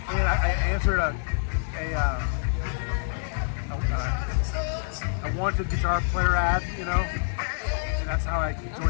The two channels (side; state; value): right; silent; digital silence